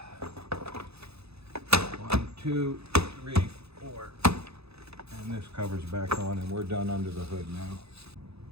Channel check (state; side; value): late; left; 0.79 ms